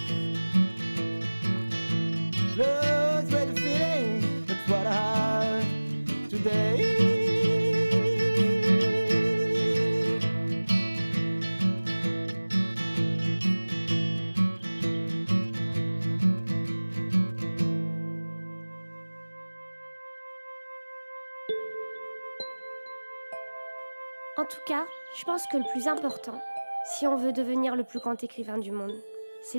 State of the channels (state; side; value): inverted; both; correlation -1.00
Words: En tout cas, je pense que le plus important, si on veut devenir le plus grand écrivain du monde,